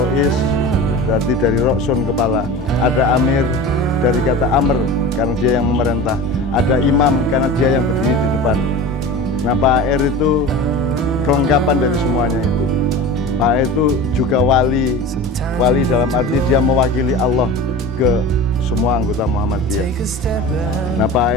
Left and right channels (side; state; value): both; normal; correlation 0.33